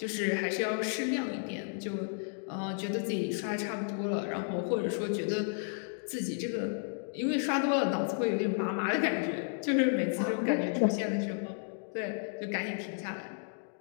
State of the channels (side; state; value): right; silent; 56 dB below the other